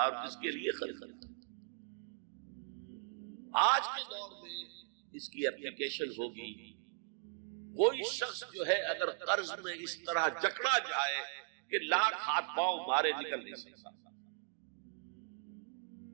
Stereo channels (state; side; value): silent; left; digital silence